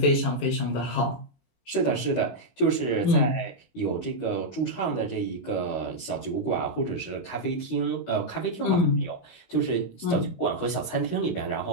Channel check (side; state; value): right; late; 16 ms